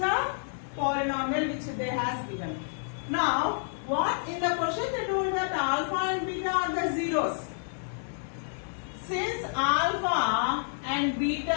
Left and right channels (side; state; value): right; silent; digital silence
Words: polynomial which they has given. Now, what in the question they told that alpha and beta are the zeros. Since alpha and